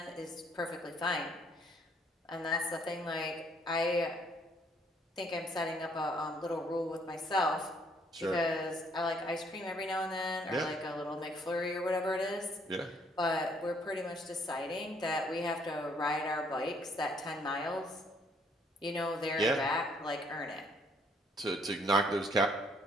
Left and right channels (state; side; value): normal; both; correlation 0.65